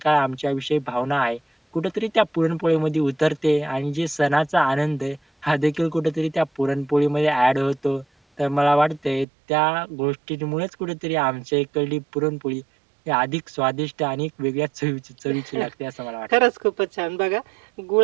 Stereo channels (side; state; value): left; drops out; at 9.2 s